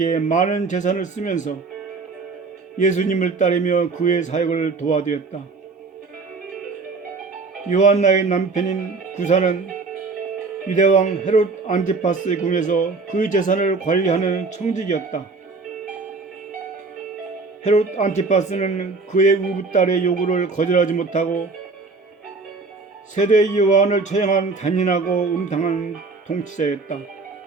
많은 재산을 쓰면서 예수님을 따르며 그의 사역을 도와드렸다. 요한나의 남편인 구사는 유대왕 헤롯 안티파스의 궁에서 그 재산을 관리하는 청직이었다. 헤롯 안티파스는 그의 우부딸의 요구를 거절하지 못하고 세례 요한을 처형한 잔인하고 음탕한 통치자였다.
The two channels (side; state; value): left; quieter; 4.1 dB